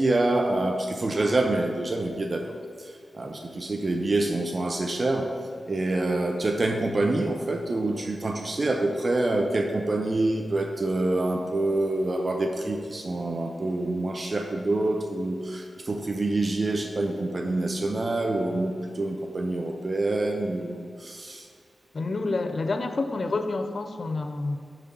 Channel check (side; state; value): both; normal; correlation 0.93